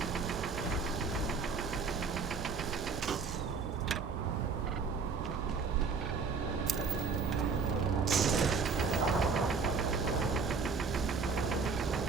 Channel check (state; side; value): quieter; left; 5.1 dB